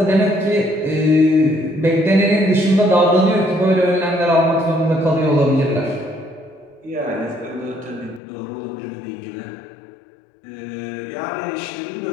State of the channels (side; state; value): right; drops out; at 8.2 s